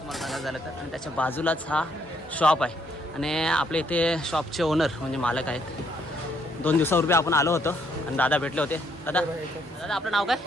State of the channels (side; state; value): both; normal; correlation 0.70